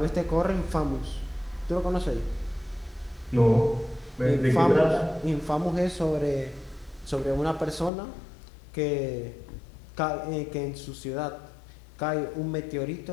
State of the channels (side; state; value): right; drops out; at 7.9 s